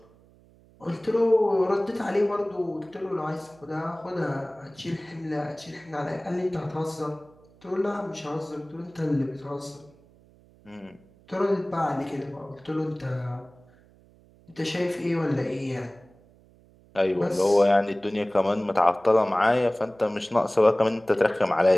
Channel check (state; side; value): noise; right; hum, 28 dB below the sound